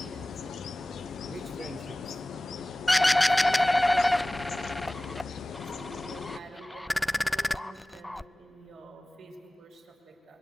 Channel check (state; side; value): normal; both; correlation 0.98